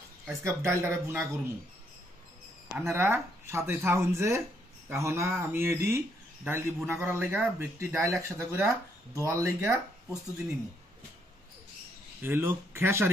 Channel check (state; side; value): normal; both; correlation 0.73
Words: আজকা ডাইলটারে বুনা করমু। আন্নারা সাথে থাকুন যে এখন আমি এডি ডাইলটি বুনা করার লেগা ব্যক্তি ডাইল একসাথে করে দোয়ার লেগা প্রস্তুতি নিমু। হইলো